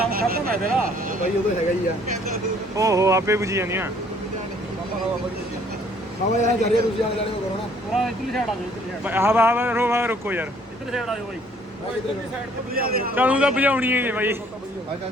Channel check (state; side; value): normal; both; correlation 0.60